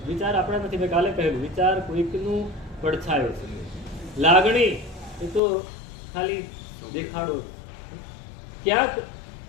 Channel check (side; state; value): right; drops out; at 5.4 s